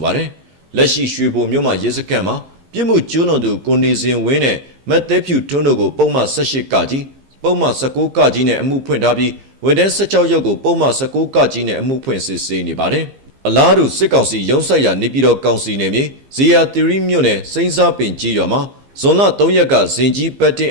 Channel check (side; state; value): left; late; 15 ms